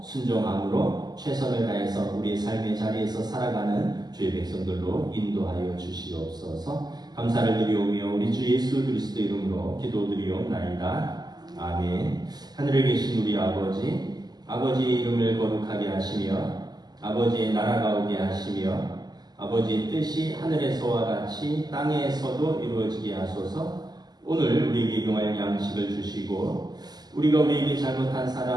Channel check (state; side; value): late; left; 0.20 ms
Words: 순종함으로 최선을 다해서 우리의 삶의 자리에서 살아가는 주의 백성들로 인도하여 주시옵소서. 감사를 드리오며 우리 주 예수 그리스도 이름으로 기도드리옵나이다. 아멘. 하늘에 계신 우리 아버지, 아버지의 이름을 거룩하게 하시며 아버지의 나라가 오게 하시며 아버지의 뜻이 하늘에서와 같이 땅에서도 이루어지게 하소서. 오늘 우리에게 용할 양식을 주시고 우리가 우리에게 잘못한